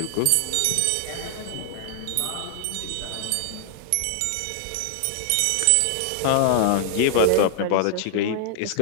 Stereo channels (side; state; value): both; different; correlation -0.01